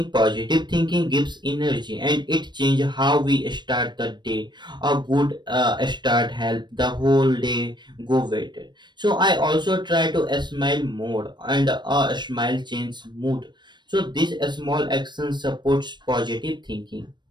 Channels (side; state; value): left; late; 0.22 ms